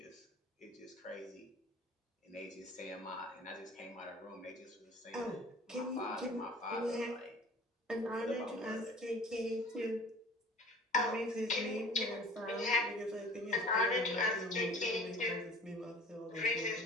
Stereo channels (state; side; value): normal; both; correlation 0.46